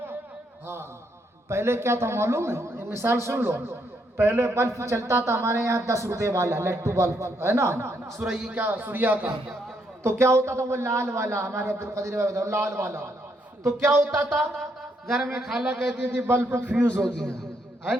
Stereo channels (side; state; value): both; normal; correlation 0.75